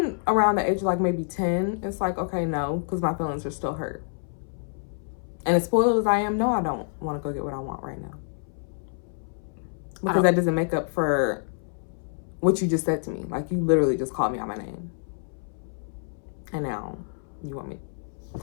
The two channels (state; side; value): silent; right; 60 dB below the other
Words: around the age of maybe 10, it's like, okay, no, because my feelings are still hurt. And as spoiled as I am, no, I don't want to go get what I want right now. Because that doesn't make up for what you just said to me. You literally just called me out my name. And now you want me,